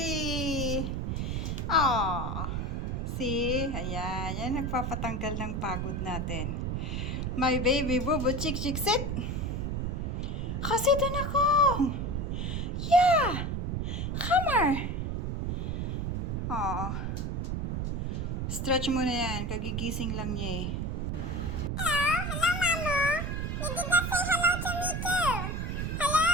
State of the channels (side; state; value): right; noise; rumble, 1 dB below the sound